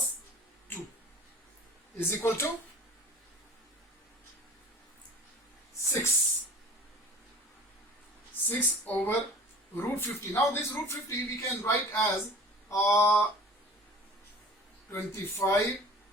2 is equal to 6. 6 over root 50. Now this root 50 we can write as 25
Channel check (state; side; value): normal; both; correlation 0.42